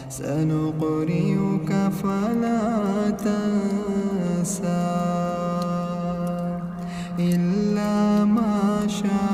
سنقرئك فلا تنسى إلا ما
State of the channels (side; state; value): both; identical; correlation 1.00